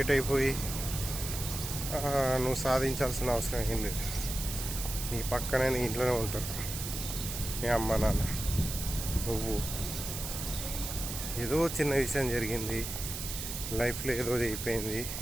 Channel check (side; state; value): right; noise; hiss, 6 dB below the sound